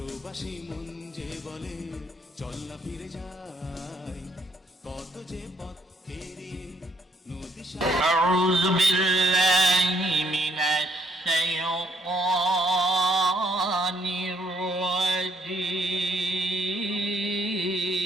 মন যে বলে চল না ফিরে যাই। কত যে পথ পেরিয়ে নদী সাগর। আউযু বিল্লাহি মিনাশ শাইতানির রাজীম।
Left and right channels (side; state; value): both; normal; correlation 0.69